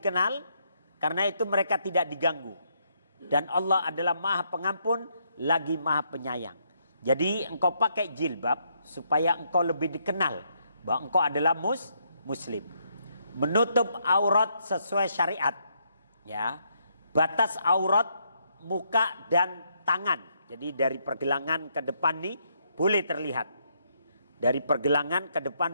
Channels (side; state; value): both; inverted; correlation -0.75